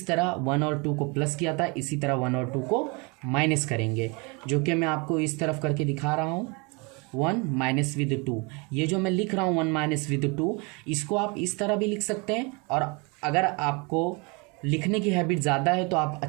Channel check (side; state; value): left; quieter; 29.9 dB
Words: तरह 1 और 2 को प्लस किया था इसी तरह 1 और 2 को माइनस करेंगे, जो कि मैं आपको इस तरफ करके दिखा रहा हूँ। 1 माइनस विद 2, ये जो मैं लिख रहा हूँ 1 माइनस विद 2, इसको आप इस तरह भी लिख सकते हैं। और अगर आपको लिखने की हैबिट ज़्यादा है तो आप